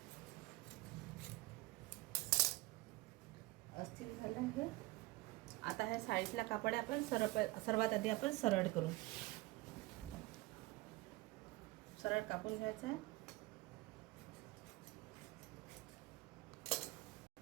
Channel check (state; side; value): quieter; left; 20.0 dB